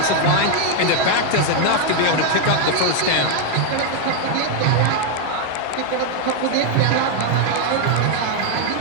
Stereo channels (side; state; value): both; different; correlation 0.01